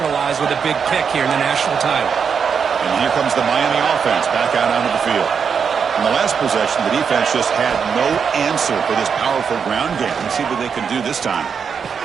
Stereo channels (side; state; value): left; quieter; 6.5 dB